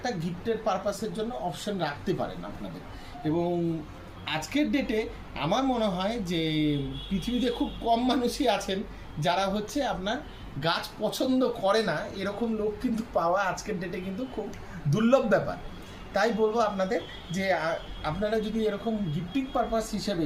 গিফটের পারপাসের জন্য অপশন রাখতে পারেন আপনাদের। এবং আজকের ডেটে আমার মনে হয় যে পৃথিবীতে খুব কম মানুষই আছেন যারা হচ্ছে আপনার গাছ পছন্দ করে না, এরকম লোক কিন্তু পাওয়া আজকের ডেটে কিন্তু খুব দুর্লভ ব্যাপার। তাই বলবো আপনাদের যে আপনারা যদি এরকম গিফটিং পারপাস হিসেবে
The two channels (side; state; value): both; identical; correlation 1.00